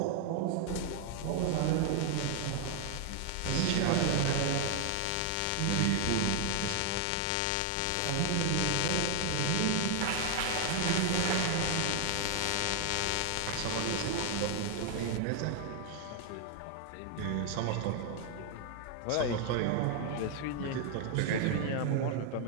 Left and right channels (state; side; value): different; both; correlation 0.00